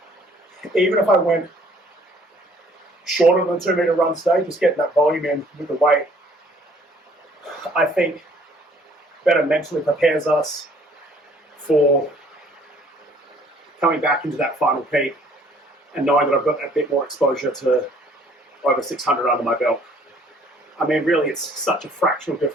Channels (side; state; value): both; normal; correlation 0.59